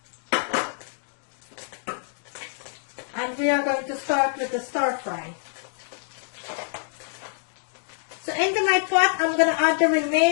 And we are going to start with the stir fry. So into my pot, I'm going to add the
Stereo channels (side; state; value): right; silent; digital silence